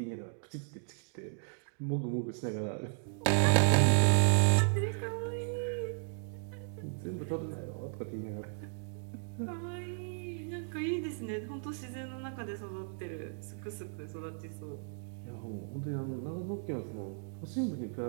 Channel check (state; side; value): silent; left; digital silence